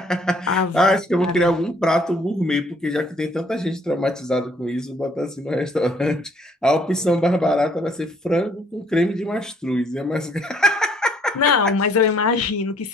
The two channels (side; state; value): both; normal; correlation 0.63